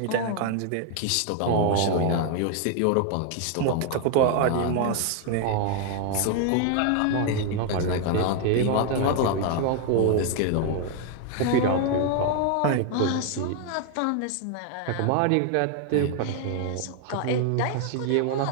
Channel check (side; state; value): both; different; correlation 0.01